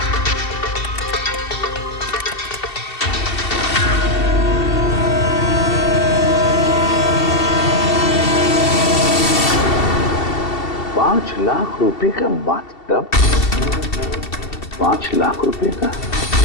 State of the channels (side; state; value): right; late; 2.7 ms